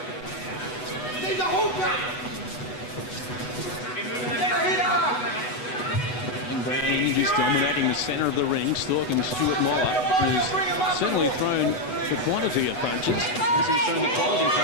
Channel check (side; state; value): right; late; 8.1 ms